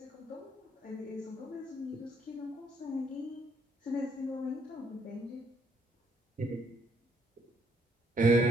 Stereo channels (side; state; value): both; normal; correlation 0.70